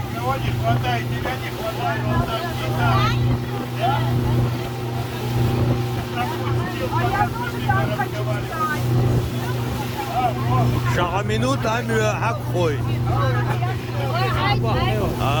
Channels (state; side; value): identical; both; correlation 1.00